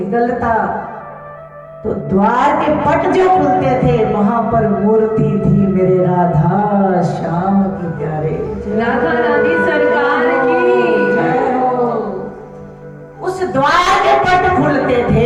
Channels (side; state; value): both; identical; correlation 1.00